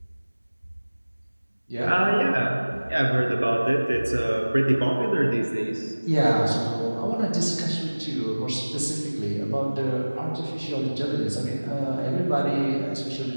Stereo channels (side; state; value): both; inverted; correlation -1.00